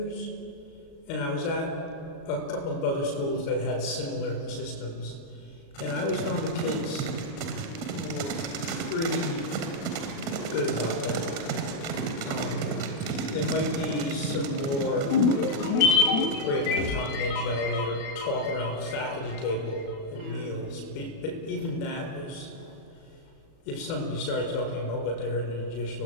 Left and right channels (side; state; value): right; late; 36 ms